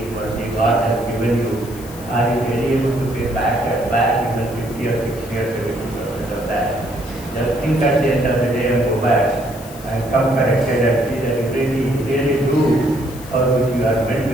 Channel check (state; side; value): noise; left; hiss, 18 dB below the sound